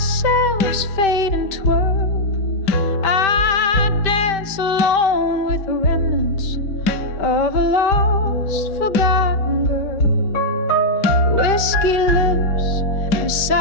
selves fade and twirl, I dance alone with the remnants of a lost, forgotten girl. Whiskey lips and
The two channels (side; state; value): right; late; 5.1 ms